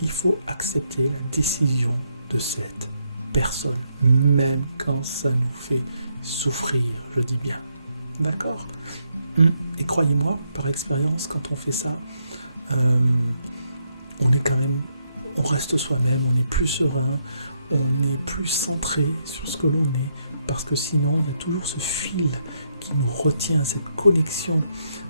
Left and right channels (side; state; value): both; inverted; correlation -0.77